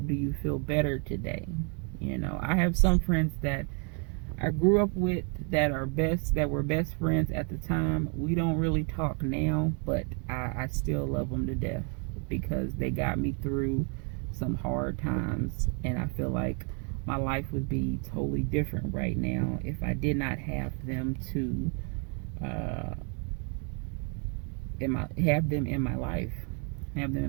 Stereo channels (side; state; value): left; quieter; 37.7 dB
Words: you feel better today? I have some friends that I grew up with that were best friends at the time. We don't really talk now, but I still love them to death, because they got me through some hard times, and I feel like my life would be totally different right now if I did not have them to have them in my